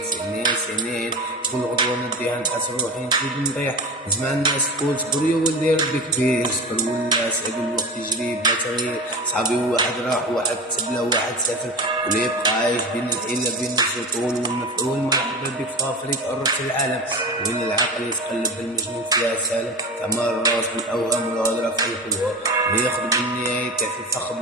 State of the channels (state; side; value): normal; both; correlation 0.29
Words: سنين كل غدوة نديها نحس روحي نزيد نطيح. نسمع الناس تقول صبر يا ولدي ربي كبير. صبر ولا سعد الوقت يجري بلا تغيير. صحابي واحد راح واحد تبلا واحد سافر، واللي يبقى عايش بين الحيلة بين السطول والمفعول. مرحبا بك في افريقيا قربت العالم، وين العقل يتقلب المجنون فيها سالم. تعمر الراس بالاوهام والهضره في الحلوه، وياخذ بالنهايه في فخ